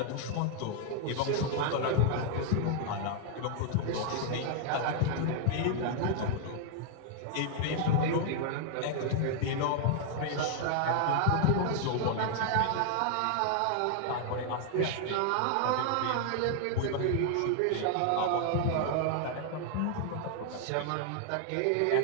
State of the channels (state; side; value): different; both; correlation 0.00